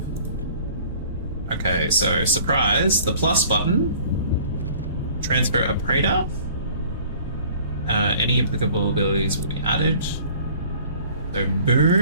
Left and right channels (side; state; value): both; inverted; correlation -0.51